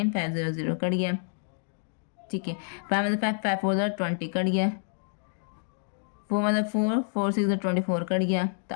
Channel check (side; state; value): right; silent; digital silence